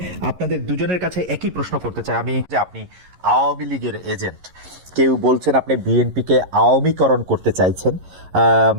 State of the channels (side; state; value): left; late; 11 ms